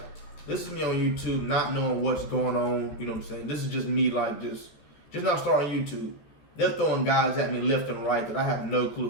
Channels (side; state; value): right; late; 14 ms